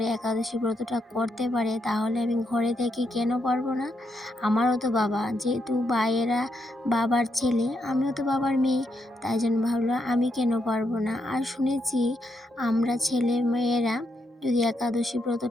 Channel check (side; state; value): both; normal; correlation 0.80